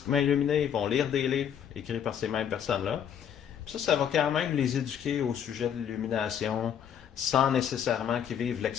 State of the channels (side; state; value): right; quieter; 8.8 dB